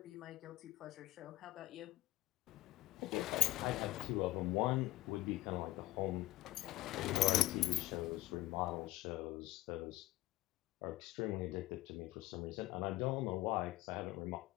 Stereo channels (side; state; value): right; quieter; 17.4 dB